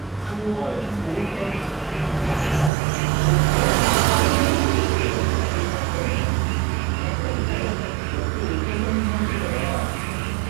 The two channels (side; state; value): left; drops out; at 2.7 s